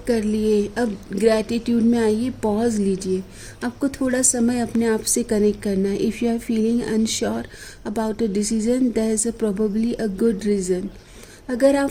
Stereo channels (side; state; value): both; identical; correlation 1.00